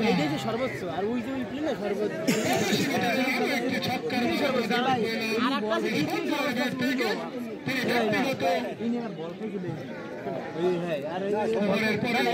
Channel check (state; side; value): identical; both; correlation 1.00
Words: সর্বোচ্চ আর ওই যে সর্বোচ্চ একটি ছক্কার